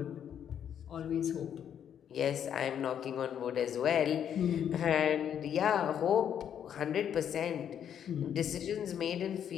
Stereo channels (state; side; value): quieter; right; 9.0 dB